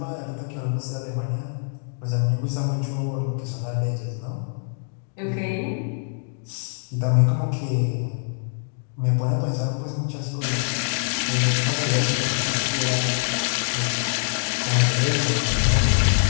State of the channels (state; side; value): silent; right; digital silence